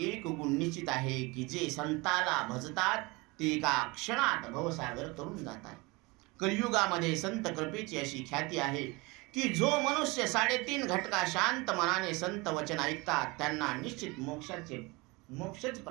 एक गुण निश्चित आहे की जे संताला भजतात ते एका क्षणात भवसागर तरून जातात. कलियुगामध्ये संत कृपेची अशी ख्याती आहे की जो मनुष्य 3.5 घटका शांत मनाने संत वचन ऐकतात त्यांना निश्चित मोक्षच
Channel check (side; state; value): left; quieter; 25.0 dB